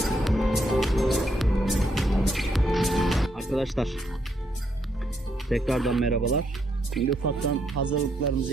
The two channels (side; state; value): both; normal; correlation 0.76